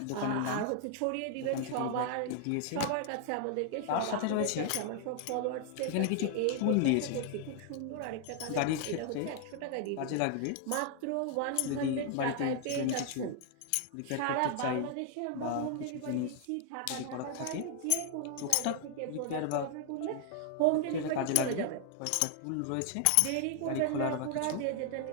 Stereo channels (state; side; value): different; both; correlation 0.00